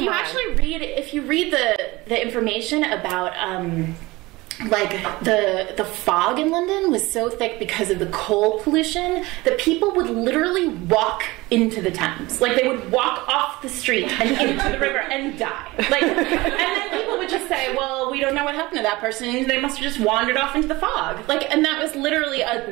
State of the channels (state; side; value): quieter; left; 21.2 dB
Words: you read the information about like the fog in London was so thick because of the coal pollution that people would literally walk into the Thames. Like, they would walk off the street and into the river and die. Like, and then people would just say, well, we don't know what happened to that person. They must have just wandered off into the fog. Like, and that was literally